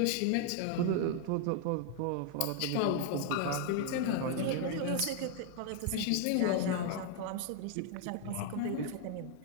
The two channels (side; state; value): both; different; correlation 0.00